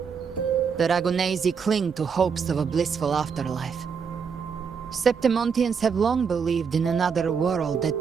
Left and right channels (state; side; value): quieter; left; 6.2 dB